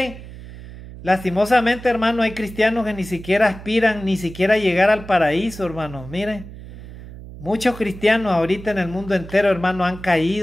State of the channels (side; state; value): right; noise; hum, 15 dB below the sound